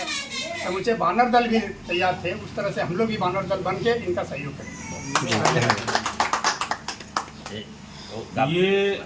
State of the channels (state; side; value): identical; both; correlation 1.00